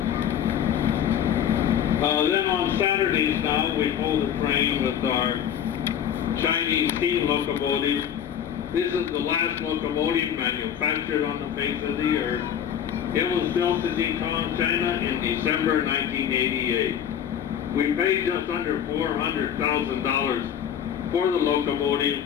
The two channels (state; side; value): quieter; right; 9.2 dB